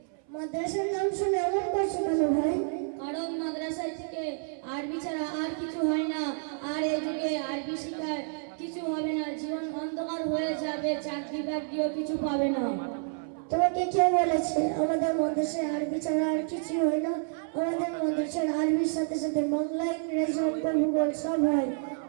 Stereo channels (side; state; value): left; silent; 58 dB below the other